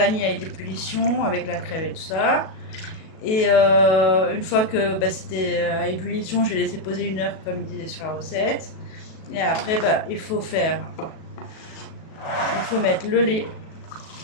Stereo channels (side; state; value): right; late; 37 ms